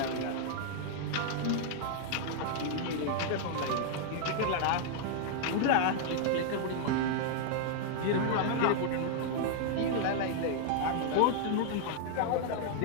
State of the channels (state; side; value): different; both; correlation 0.00